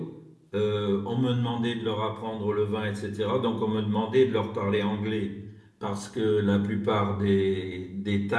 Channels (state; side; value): identical; both; correlation 1.00